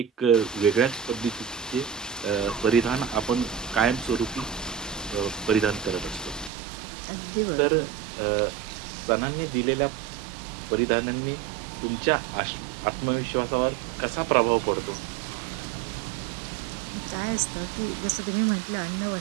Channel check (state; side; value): drops out; left; at 6.5 s